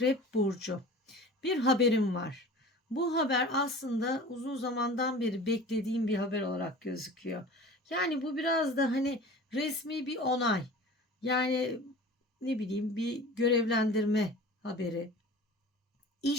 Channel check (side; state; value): both; normal; correlation 0.40